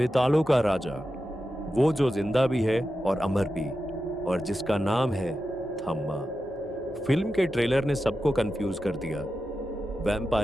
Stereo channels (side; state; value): both; normal; correlation 0.91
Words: का राजा, वो जो जिंदा भी है और अमर भी, और जिसका नाम है थम्मा। फिल्म के ट्रेलर ने सबको कंफ्यूज कर दिया।